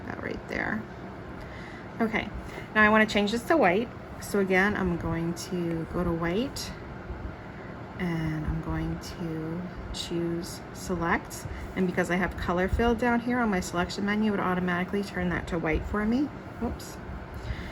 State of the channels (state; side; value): identical; both; correlation 1.00